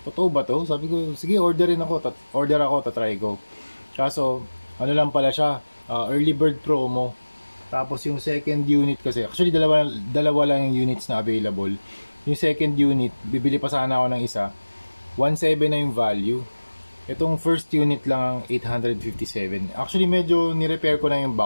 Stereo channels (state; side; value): inverted; both; correlation -1.00